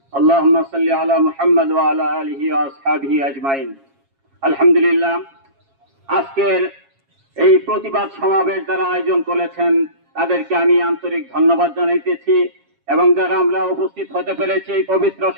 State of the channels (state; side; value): late; left; 7.3 ms